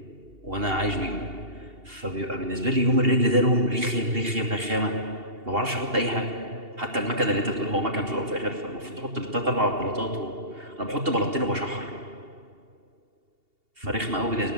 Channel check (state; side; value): late; left; 2.8 ms